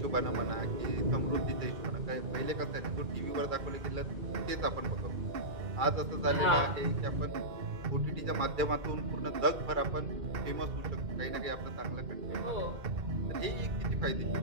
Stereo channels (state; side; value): late; left; 2.3 ms